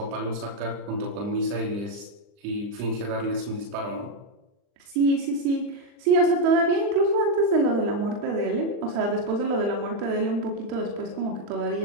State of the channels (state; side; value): late; left; 39 ms